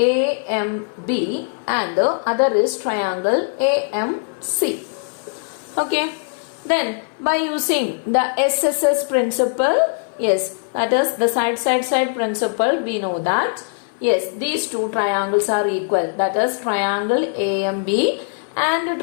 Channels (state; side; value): silent; right; 60 dB below the other